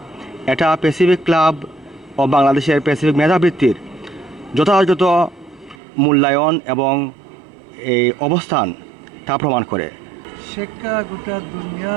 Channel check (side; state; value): left; drops out; at 5.8 s